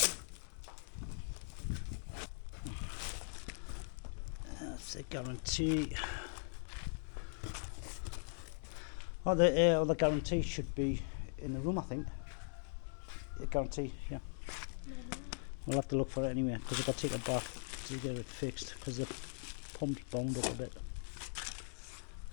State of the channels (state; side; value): silent; right; digital silence